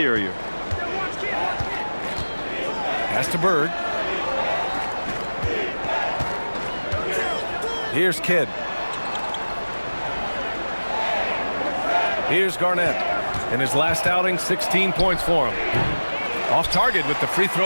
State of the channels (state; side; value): inverted; both; correlation -1.00